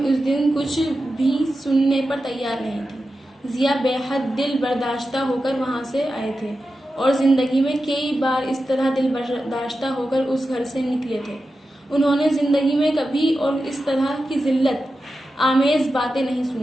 اس دن کچھ بھی سننے پر تیار نہیں تھی۔ ضیا بے حد دل برداشتہ ہو کر وہاں سے آئے تھے، اور زندگی میں کئی بار اس طرح دل برداشتہ ہو کر اس گھر سے نکلے تھے۔ انہوں نے زندگی میں کبھی اور اس طرح کی ذلت آمیز باتیں نہیں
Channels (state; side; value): normal; both; correlation 0.91